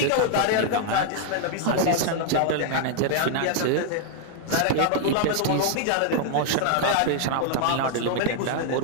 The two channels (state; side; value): different; both; correlation 0.00